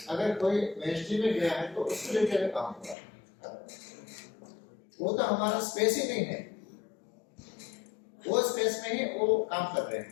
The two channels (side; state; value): right; drops out; at 3.0 s